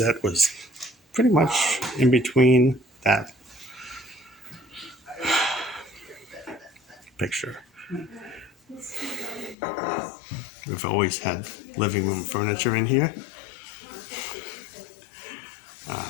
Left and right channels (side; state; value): right; drops out; at 9.6 s